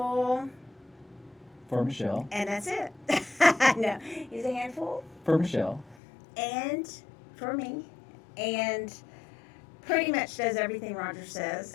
For Michelle. And that's it. No, he's a handful. For Michelle. And for me. And pretty much does everything Roger says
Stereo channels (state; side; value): drops out; right; at 6.0 s